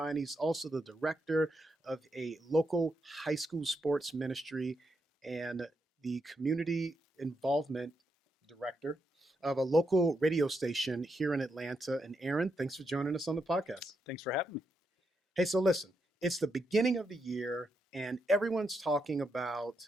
He's also the director of a local high school sports ministry and the community involvement director of a local radio station here in Atlanta. And Aaron, thanks for joining us on the podcast. Thanks for having me. Hey, so listen, it's the beginning of the year, and everyone's talking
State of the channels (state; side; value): normal; both; correlation 0.82